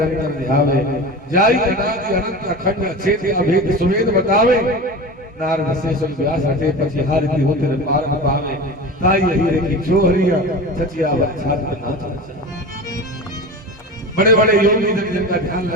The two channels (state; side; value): normal; both; correlation 0.30